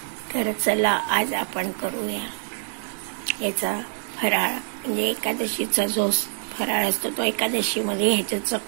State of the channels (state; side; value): silent; left; 60 dB below the other